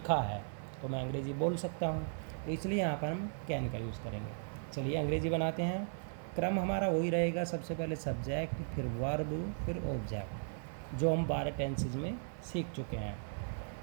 है, तो मैं अंग्रेज़ी बोल सकता हूँ। तो इसलिए यहाँ पर हम कैन का यूज़ करेंगे। चलिए अंग्रेज़ी बनाते हैं। क्रम हमारा वही रहेगा, सबसे पहले सब्जेक्ट, फिर वर्ब, फिर ऑब्जेक्ट, जो हम 12 टेंसेज में सीख चुके हैं।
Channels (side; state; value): left; silent; 53 dB below the other